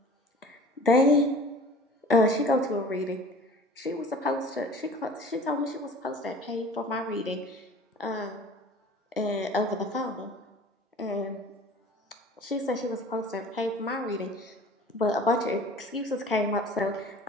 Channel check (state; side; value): normal; both; correlation 0.44